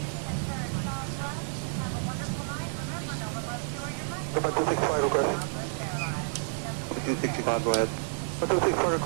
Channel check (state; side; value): silent; left; digital silence